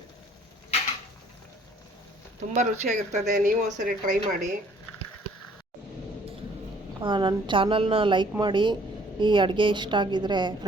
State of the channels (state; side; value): normal; both; correlation 0.59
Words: ತುಂಬ ರುಚಿಯಾಗಿರ್ತದೆ. ನೀವು ಒಂದ್ಸರಿ ಟ್ರೈ ಮಾಡಿ. ನನ್ನ ಚಾನಲ್ನ ಲೈಕ್ ಮಾಡಿ. ಈ ಅಡುಗೆ ಇಷ್ಟ ಆಗಿದರೆ